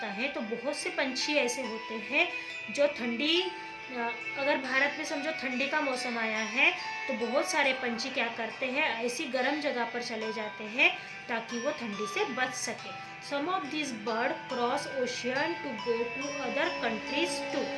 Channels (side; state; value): both; identical; correlation 1.00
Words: है तो बहुत से पंछी ऐसे होते हैं जो अगर भारत में समझो ठंडी का मौसम आया है तो बहुत सारे पंछी क्या करते हैं, ऐसी गर्म जगह पर चले जाते हैं ताकि वो ठंडी से बच सके। Some of this bird cross ocean to go to other countries too.